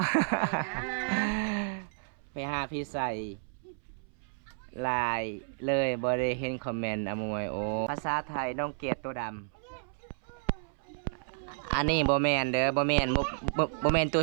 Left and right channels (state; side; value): silent; left; 57 dB below the other